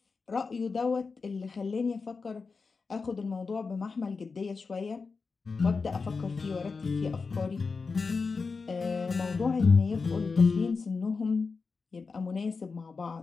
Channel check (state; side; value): quieter; right; 4.6 dB